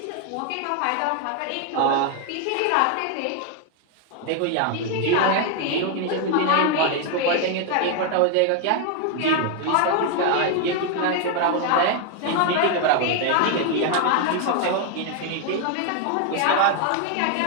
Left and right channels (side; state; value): both; different; correlation 0.00